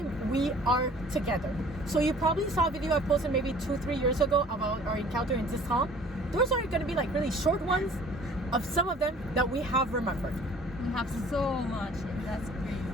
we are together. So you probably saw a video I posted maybe 2-3 years ago about our encounter in Distant. Those are going to be like really short ones of some of them that we have remembered. We have so much, that's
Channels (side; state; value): both; normal; correlation 0.51